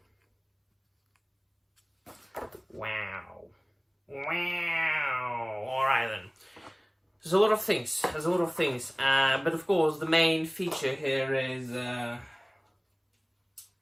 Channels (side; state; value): both; identical; correlation 1.00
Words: Wow. Alright then. There's a lot of things. But of course, the main feature here is